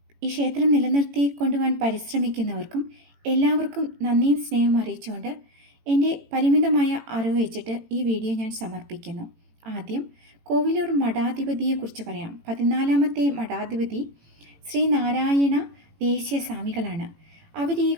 ഈ ക്ഷേത്രം നിലനിർത്തി കൊണ്ടുപോകാൻ പരിശ്രമിക്കുന്നവർക്കും എല്ലാവർക്കും നന്ദിയും സ്നേഹവും അറിയിച്ചുകൊണ്ട് എൻ്റെ പരിമിതമായ അറിവ് വെച്ചിട്ട് ഈ വീഡിയോ ഞാൻ സമർപ്പിക്കുന്നു. ആദ്യം കോവിലൂർ മഠാധിപതിയെക്കുറിച്ച് പറയാം. 14ാമത്തെ മഠാധിപതി ശ്രീ നാരായണ ദേശീയ സ്വാമികളാണ്. അവർ ഈ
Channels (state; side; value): late; left; 18 ms